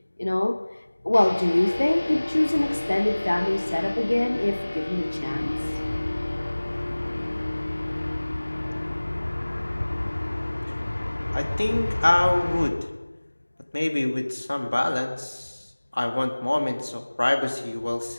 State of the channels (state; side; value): inverted; both; correlation -1.00